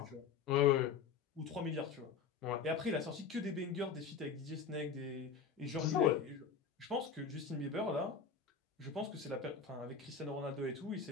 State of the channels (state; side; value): quieter; right; 6.0 dB